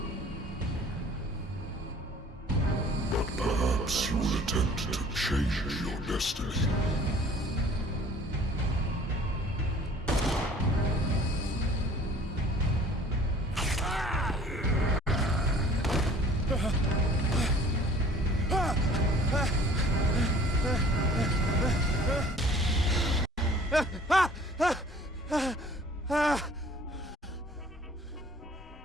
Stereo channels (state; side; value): normal; both; correlation 0.51